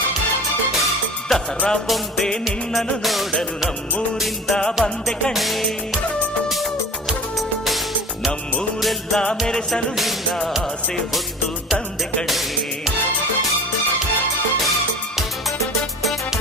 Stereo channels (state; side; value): normal; both; correlation 0.37